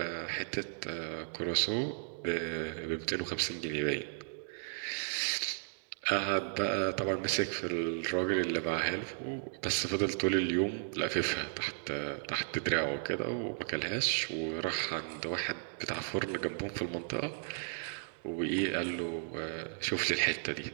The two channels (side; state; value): left; silent; digital silence